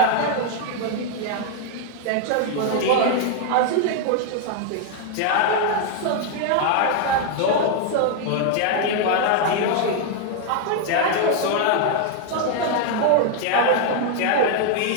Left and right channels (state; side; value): different; both; correlation 0.00